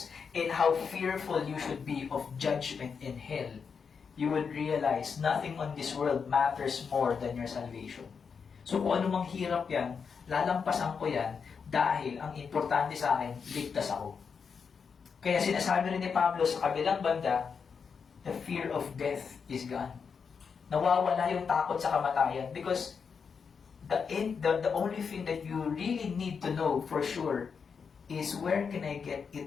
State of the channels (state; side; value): quieter; right; 6.0 dB